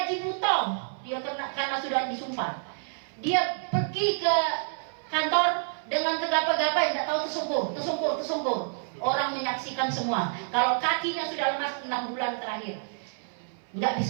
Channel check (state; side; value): silent; left; 57 dB below the other